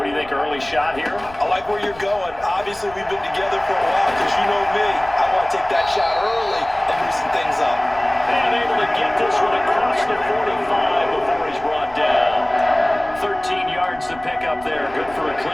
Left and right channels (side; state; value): left; noise; rumble, 21 dB below the sound